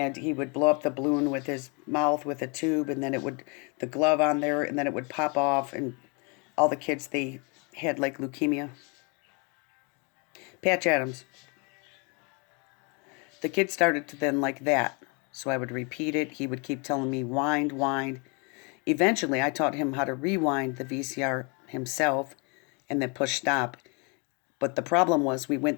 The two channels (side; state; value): right; quieter; 33.2 dB